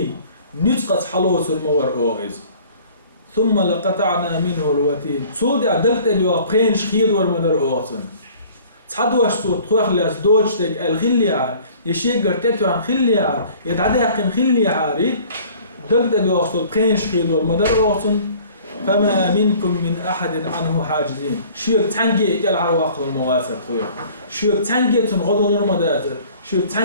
نتقط حلوس المور أوغز ثم لقطعنا منه الوتين صود عدلت اليوقين شخير ورمدر أوغسن تحدوش صوت خوخ لاس دوجتك الخليعة يشيقر تتو عن خليعة يتعدي حقن خليعة دلت اليوقين قين شخير ورمدر أوغسن فما منكم من أحد عنه حاجزين شوك تنجي إكال عرواق المواسر خويا شوك تنجي تنغضل المداتر شوك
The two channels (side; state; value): both; inverted; correlation -0.51